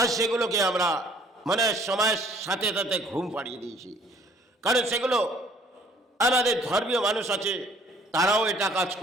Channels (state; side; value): normal; both; correlation 0.57